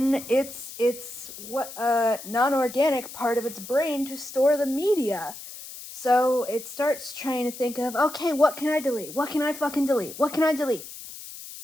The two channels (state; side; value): noise; left; hiss, 13 dB below the sound